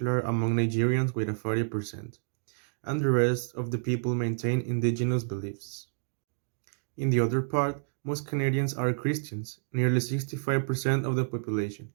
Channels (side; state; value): left; silent; digital silence